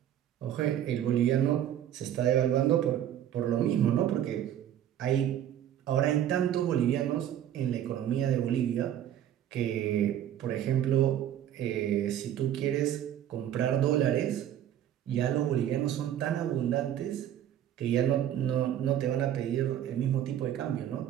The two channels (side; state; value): left; quieter; 10.9 dB